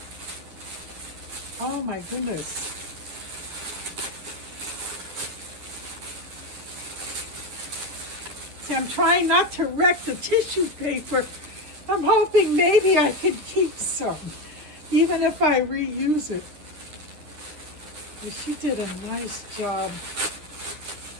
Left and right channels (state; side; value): late; left; 9.8 ms